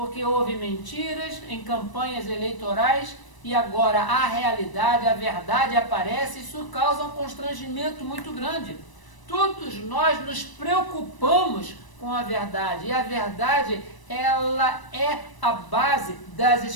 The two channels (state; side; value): late; right; 1.0 ms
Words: houve mentiras em campanhas eleitorais e agora a realidade, a verdade aparece, isso causa um constrangimento muito grande. Todos nós nos preocupamos com a verdade, e a verdade, ela é a base das